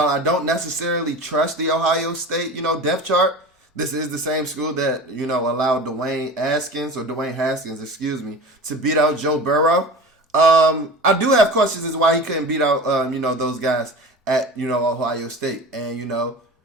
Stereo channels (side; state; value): both; normal; correlation 0.34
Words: don't necessarily trust the Ohio State, depth chart, this is the same school that, allowed Dwayne Haskins, to beat out Joe Burrow. I do have questions as to why he couldn't beat out, those guys at, Ohio State. And,